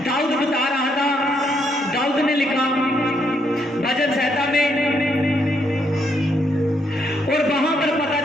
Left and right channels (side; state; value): both; normal; correlation 0.74